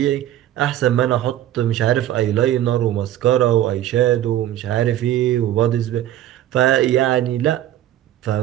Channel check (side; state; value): left; quieter; 12.7 dB